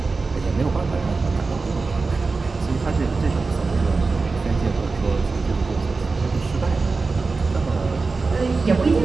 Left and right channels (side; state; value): left; quieter; 4.1 dB